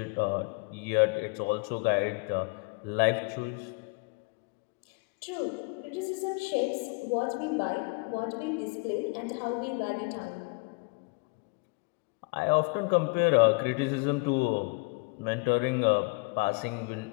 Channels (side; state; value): right; quieter; 31.0 dB